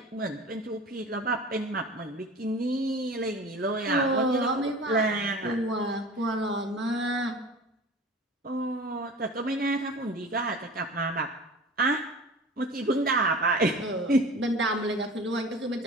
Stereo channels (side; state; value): both; normal; correlation 0.38